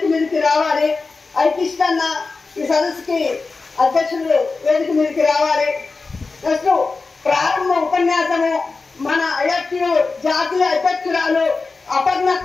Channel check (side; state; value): right; quieter; 4.1 dB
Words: మీదకి రావాలి. ఐకిష్టన్న ఈ సదస్సుకి అధ్యక్షులు వేదిక మీదకి రావాలి. నెక్స్ట్ ప్రారంభ ఉపన్యాసము మన ఐఎఫ్యు జాతీయ అధ్యక్షురాలు